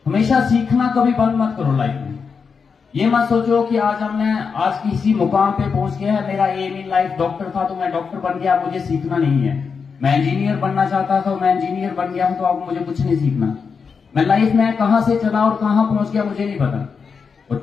हमेशा सीखना कभी बंद मत करो लाइफ में। ये मत सोचो कि आज किसी मुकाम पे पहुंच गया है, मेरा एम इन लाइफ डॉक्टर था तो मैं डॉक्टर बन गया, मुझे सीखना नहीं है। मैं इंजीनियर बनना चाहता था, मैं इंजीनियर बन गया हूं, तो अब मुझे कुछ नहीं सीखना। मैं लाइफ में कहां से चला और कहां पहुंच गया मुझे नहीं पता। और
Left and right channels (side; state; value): right; quieter; 5.6 dB